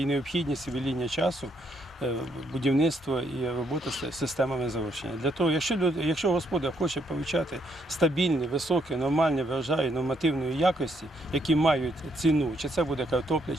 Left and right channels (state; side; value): normal; both; correlation 0.73